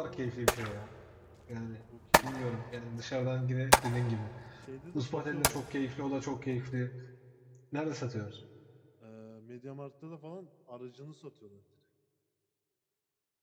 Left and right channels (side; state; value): both; identical; correlation 1.00